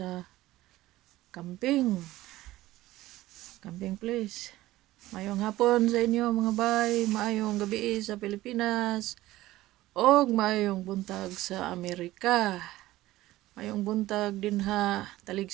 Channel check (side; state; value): left; quieter; 16.6 dB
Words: camping. Camping place. Maayong hapon sa inyo mga bay, maayong gabi sa Pilipinas. Og maayong buntag sa Amerika. Maayong buntag din ha